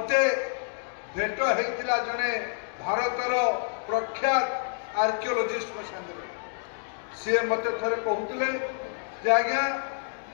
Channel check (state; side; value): silent; right; digital silence